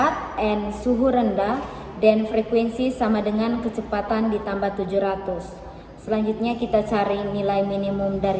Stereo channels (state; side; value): identical; both; correlation 1.00